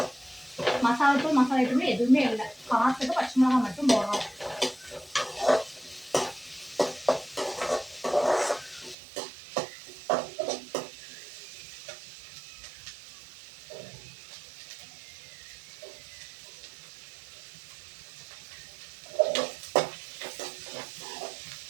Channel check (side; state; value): left; drops out; at 9.0 s